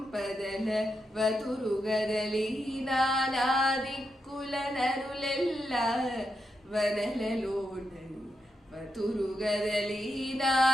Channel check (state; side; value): normal; both; correlation 0.85